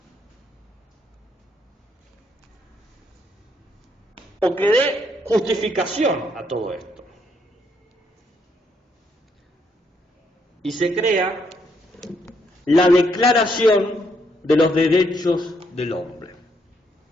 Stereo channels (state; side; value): normal; both; correlation 0.73